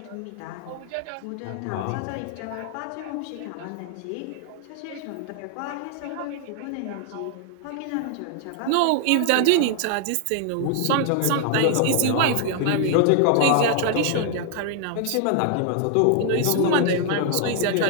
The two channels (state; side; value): different; both; correlation 0.00